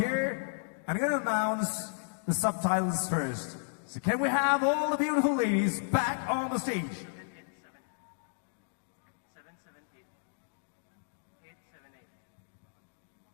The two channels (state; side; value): silent; right; digital silence